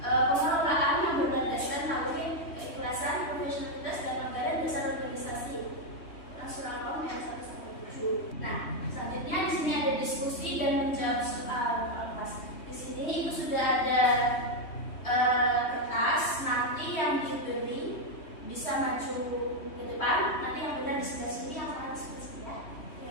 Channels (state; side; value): late; right; 3.2 ms